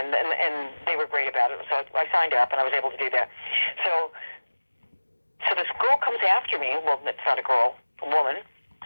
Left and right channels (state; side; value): inverted; both; correlation -1.00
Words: they were great about it. So I signed up, and I was able to do that. So this girl comes after me. Well, it's not a girl, a woman